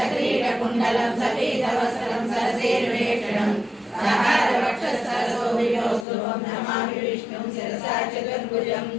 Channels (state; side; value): drops out; right; at 6.1 s